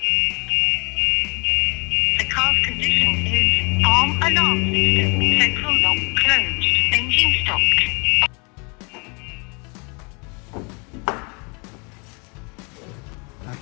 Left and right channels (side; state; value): right; quieter; 32.4 dB